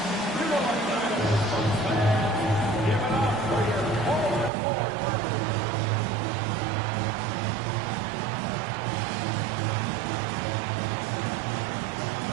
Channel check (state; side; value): drops out; left; at 4.5 s